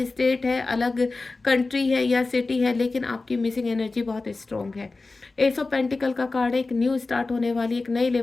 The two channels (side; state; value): right; quieter; 3.6 dB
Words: स्टेट है, अलग कंट्री है या सिटी है, लेकिन आपकी मिसिंग एनर्जी बहुत स्ट्रांग है। एस ऑफ पेंटिकल का कार्ड है, एक न्यू स्टार्ट होने वाली, एक नए